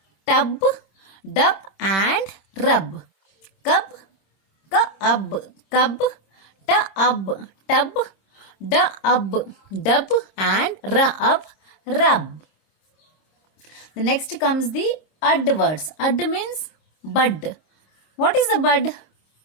tub, dub and rub. Cub, cub, tub, dub and rub. The next comes the ud words. Ud means bud. What is the bud?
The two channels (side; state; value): right; late; 26 ms